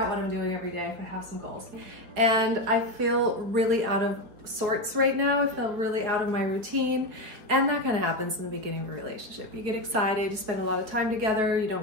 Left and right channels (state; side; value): late; left; 4.8 ms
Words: what I'm doing every day if I have some goals. And I feel really out of sorts right now. I feel really out of my routine, and that kind of happens in the beginning of a relationship. You get excited, you spend a lot of time together, you don't